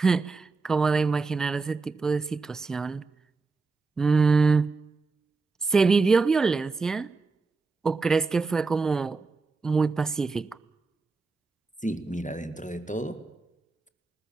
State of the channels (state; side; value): quieter; left; 4.2 dB